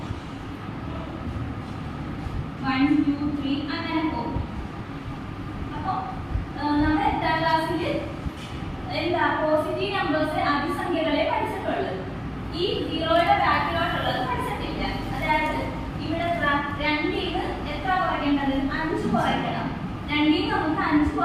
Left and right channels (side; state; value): both; identical; correlation 1.00